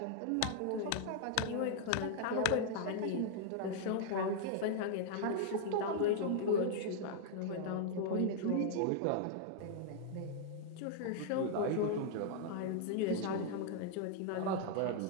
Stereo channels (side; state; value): both; different; correlation -0.01